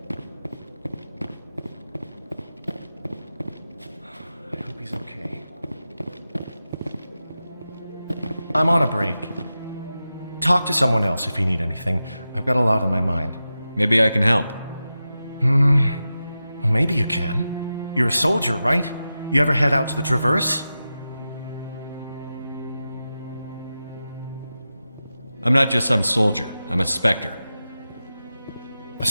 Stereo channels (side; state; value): both; inverted; correlation -0.92